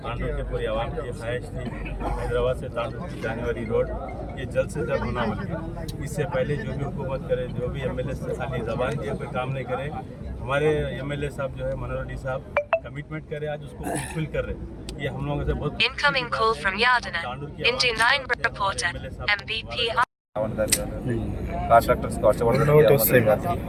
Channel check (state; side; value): identical; both; correlation 1.00